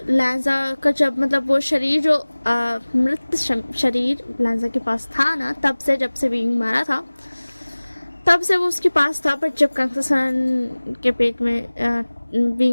लैंजा का जब मतलब वो शरीर जो मृत शरीर लैंजा के पास था ना, तब से जब से विंग मारा था तब से वो उसके पास था। बट जब कांगसरन के पेट में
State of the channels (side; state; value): both; inverted; correlation -1.00